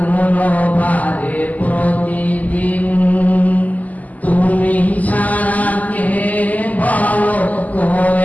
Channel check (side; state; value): right; late; 0.078 ms